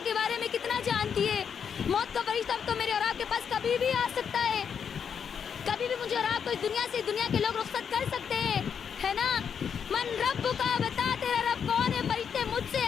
کے بارے میں کتنا جانتی ہے؟ موت کا فرشتہ تو میرے اور آپ کے پاس کبھی بھی آ سکتا ہے, کبھی بھی مجھے اور آپ کو اس دنیا سے دنیا کے لوگ رخصت کر سکتے ہیں, ہے نا. من رب کا بتا تیرا رب کون ہے. فرشتے مجھ سے,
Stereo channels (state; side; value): quieter; right; 7.2 dB